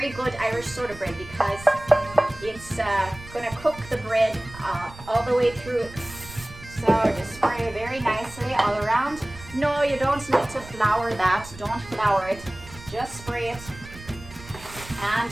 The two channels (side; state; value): right; noise; rumble, 17 dB below the sound